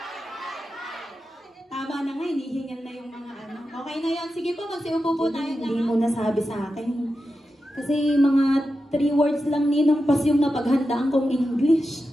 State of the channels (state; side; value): normal; both; correlation 0.90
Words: hi, hi! Tama na nga, hinihingal na yung mga ano. Okay na yan. Sige po, magsiupo po tayo na. Hindi mo nasabi sa akin. Kasi mga 3 words lang ninong pas yung napaghandaan kong English.